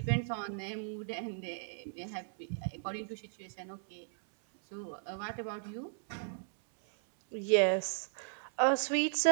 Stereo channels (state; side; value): silent; left; 54 dB below the other